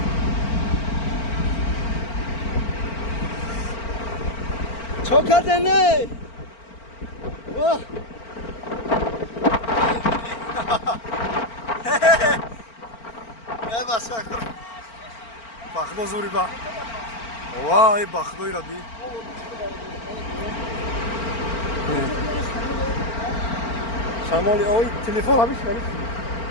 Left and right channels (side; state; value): right; late; 4.4 ms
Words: چه کردنی؟ واه ای بس کن بخدو زوری با وای بخدوی را بی شمالی اوی تلفن همیش خریف